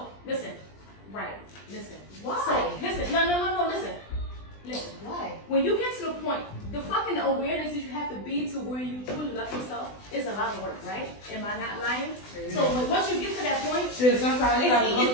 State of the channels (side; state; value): right; late; 20 ms